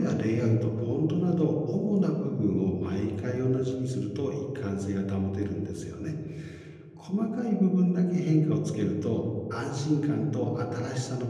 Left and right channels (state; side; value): identical; both; correlation 1.00